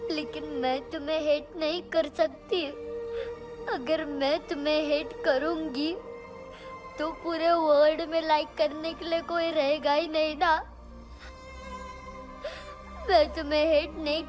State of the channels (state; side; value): identical; both; correlation 1.00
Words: लेकिन मैं तुम्हें हेट नहीं कर सकती। अगर मैं तुम्हें हेट करूंगी तो पूरे वर्ल्ड में लाइक करने के लिए कोई रहेगा ही नहीं ना। मैं तुम्हें हेट नहीं